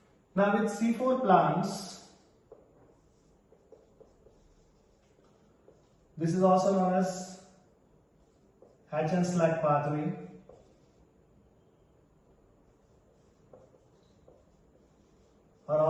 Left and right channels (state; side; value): identical; both; correlation 1.00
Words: Now with C4 plants, this is also known as Hatch and Slack pathway. Or